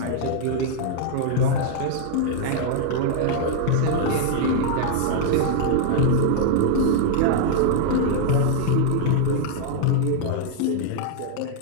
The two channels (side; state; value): both; different; correlation -0.01